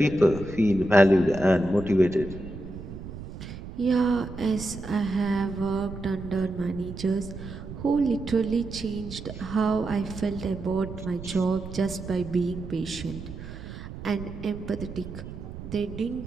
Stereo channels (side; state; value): right; noise; rumble, 11 dB below the sound